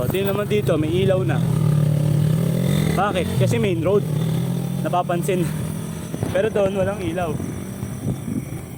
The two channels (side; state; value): both; identical; correlation 1.00